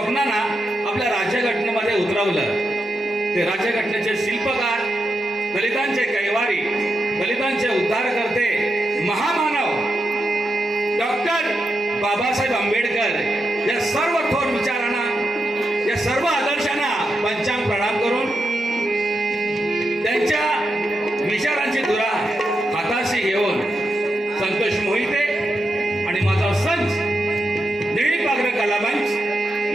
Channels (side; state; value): both; normal; correlation 0.85